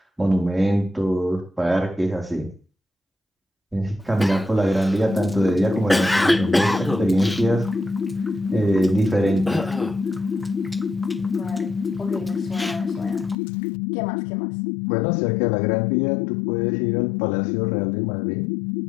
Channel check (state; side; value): drops out; right; at 13.4 s